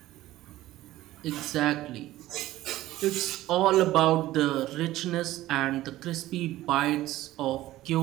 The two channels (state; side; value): quieter; left; 15.6 dB